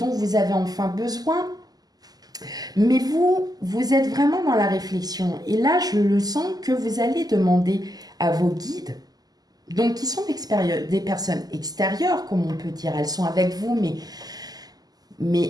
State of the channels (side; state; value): left; late; 0.19 ms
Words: vous avez enfin besoin. Mais vous êtes vraiment dans la réflexion. Et là, je le sens que vous allez demander à vos guides, donc qui sont des personnes extérieures, comme on peut dire. Elles sont avec vous,